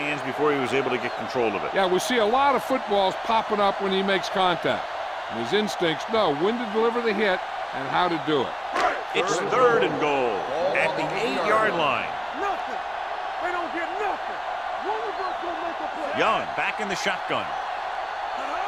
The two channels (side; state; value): both; identical; correlation 1.00